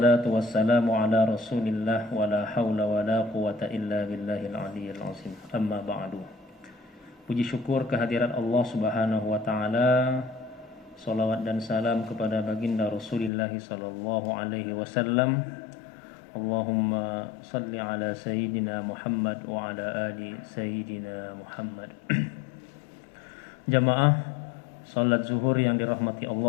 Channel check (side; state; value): right; drops out; at 13.3 s